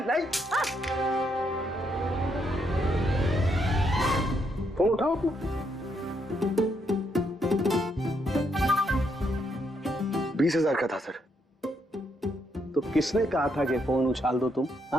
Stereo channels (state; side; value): normal; both; correlation 0.76